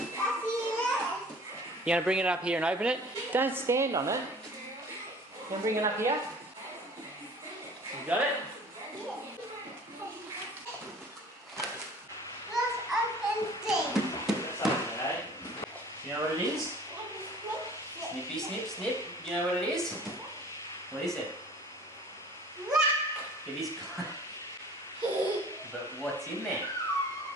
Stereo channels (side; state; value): both; normal; correlation 0.47